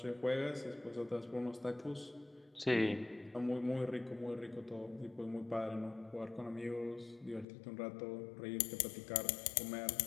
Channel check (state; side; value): drops out; right; at 7.5 s